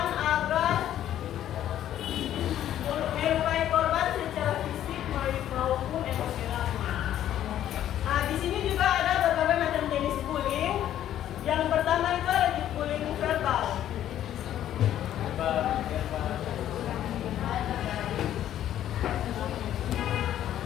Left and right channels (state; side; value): quieter; right; 11.6 dB